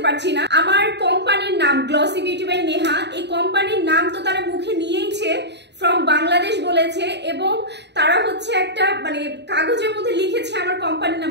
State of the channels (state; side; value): late; left; 0.50 ms